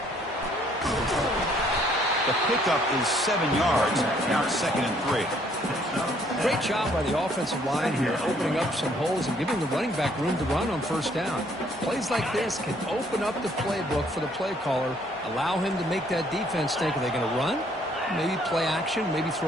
The pickup is 7 yards. Now it's 2nd and 3. Great job by the offensive line here, opening up some holes and giving the running back room to run on first down. Plays like this can open up the playbook for the play caller, allow him to make that defense think, are they going to run? Maybe play action, maybe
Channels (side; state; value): both; normal; correlation 0.64